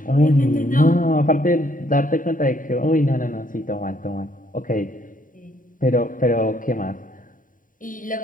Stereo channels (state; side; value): late; right; 0.39 ms